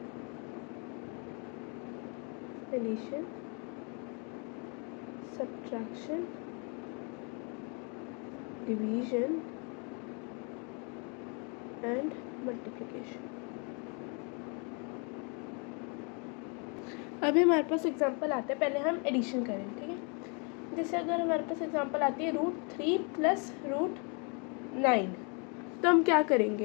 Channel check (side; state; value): right; quieter; 35.7 dB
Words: addition, subtraction, division and multiplication. अभी हमारे पास एग्जांपल आता है, पहले हम एडिशन करें। ठीक है, जैसे अगर हमारे पास एग्जांपल आती है √3 प्लस √9, तो हम क्या